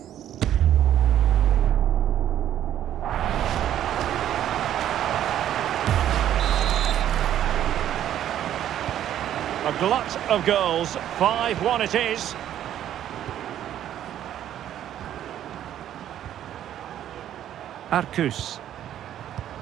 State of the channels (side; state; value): left; quieter; 11.2 dB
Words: A glut of goals. 5-1 it is. Arcus.